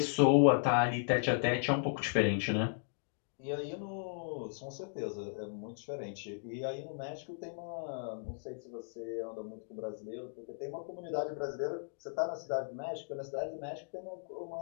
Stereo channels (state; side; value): silent; right; digital silence